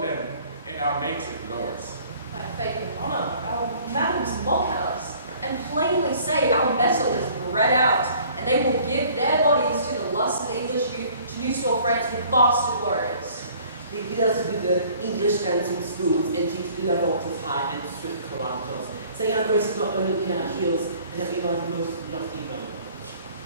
in our native lords. By faith and honour, our madams mock at us, and plainly say our metal is bred out, and they will give their bodies to the lust of the English youth to new store France with bastard warriors. They bid us with the English dancing spoons and teach Lavantis high and swift carantos, saying our grace is not only in our heels and that we are the most lofty bone.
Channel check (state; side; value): inverted; both; correlation -0.54